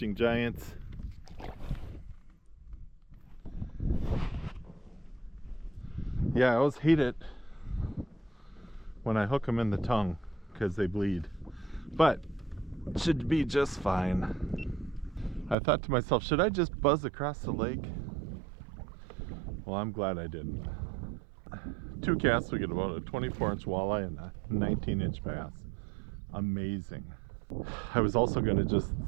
giants. Yeah, I always hate it when I hook them in the tongue because they bleed. But it should be just fine. I thought to myself, should I just buzz across the lake? Well, I'm glad I didn't. 2 casts, we get about a 24-inch walleye and a 19-inch bass. Amazing. I was also going to just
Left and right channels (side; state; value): left; drops out; at 15.6 s